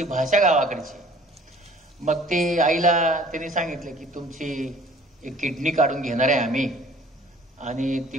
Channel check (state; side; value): normal; both; correlation 0.52